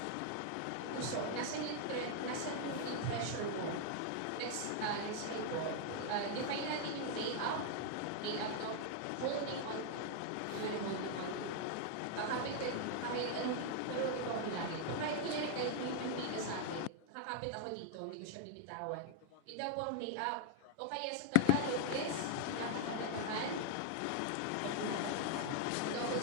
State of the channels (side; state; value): both; different; correlation 0.00